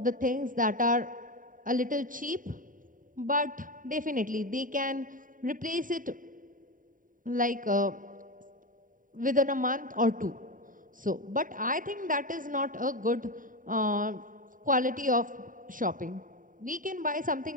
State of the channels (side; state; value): left; late; 0.39 ms